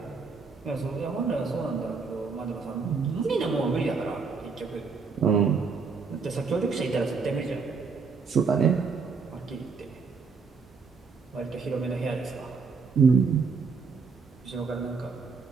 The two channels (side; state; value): left; quieter; 5.0 dB